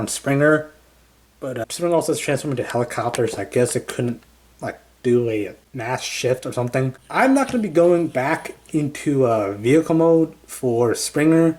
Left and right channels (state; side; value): identical; both; correlation 1.00